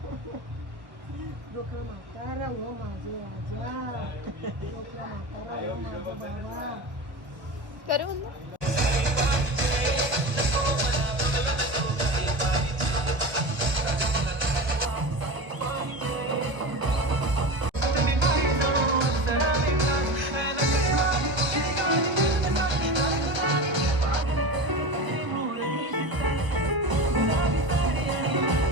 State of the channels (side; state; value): left; late; 1.3 ms